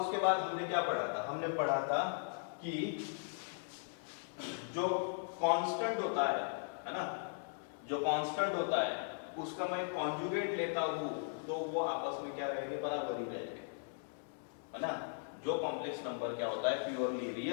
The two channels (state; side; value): silent; right; digital silence